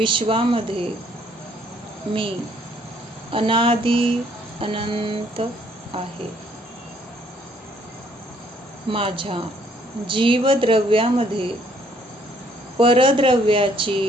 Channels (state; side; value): normal; both; correlation 0.65